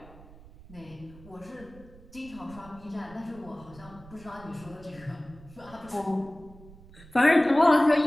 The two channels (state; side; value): noise; right; rumble, 21 dB below the sound